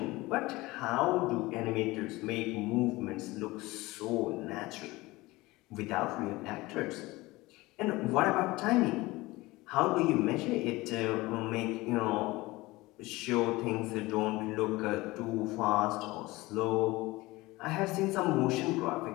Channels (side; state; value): right; quieter; 20.5 dB